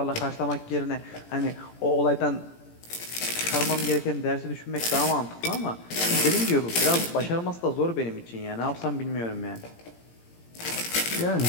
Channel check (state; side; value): late; right; 17 ms